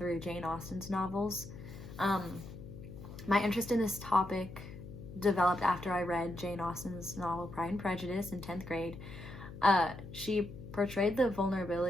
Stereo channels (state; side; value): noise; left; hum, 13 dB below the sound